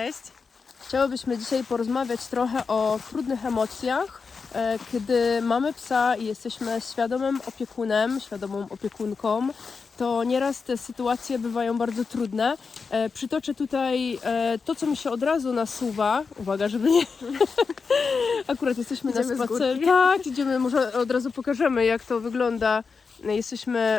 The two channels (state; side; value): quieter; right; 5.0 dB